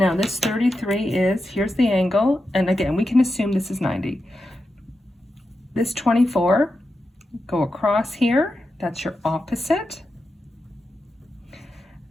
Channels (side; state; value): both; normal; correlation 0.89